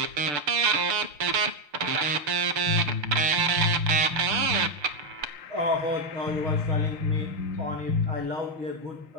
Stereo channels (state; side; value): late; left; 6.7 ms